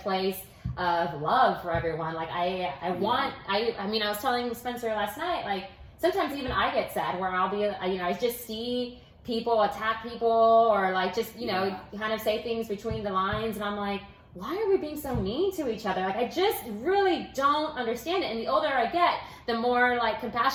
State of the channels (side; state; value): both; identical; correlation 1.00